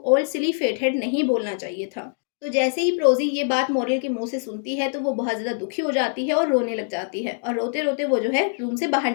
ओल्ड सिली फेटहेड नहीं बोलना चाहिए था। तो जैसे ही प्रोज़ी ये बात मॉरल के मुँह से सुनती है, तो वो बहुत ज़्यादा दुखी हो जाती है और रोने लग जाती है और रोते-रोते वो जो है रूम से बाहर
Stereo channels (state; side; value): silent; right; 63 dB below the other